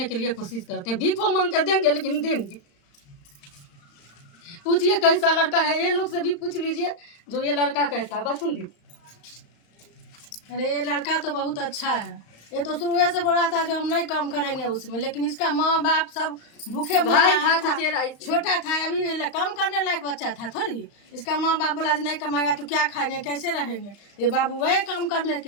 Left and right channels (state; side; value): late; right; 35 ms